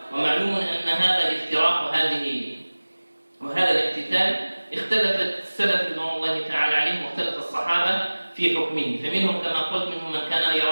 ومعلوم أن هذا الافتراق وهذا الاقتتال اختلفت السلف رضوان الله تعالى عليهم واختلف الصحابة في حكمه. فمنهم كما قلت منهم من كان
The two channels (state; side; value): inverted; both; correlation -1.00